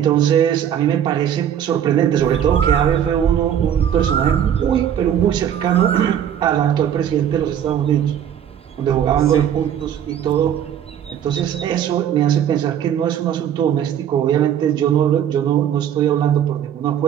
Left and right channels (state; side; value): quieter; left; 9.6 dB